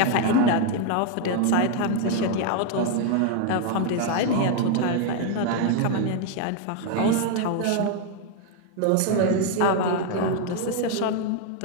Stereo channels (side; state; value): both; different; correlation 0.01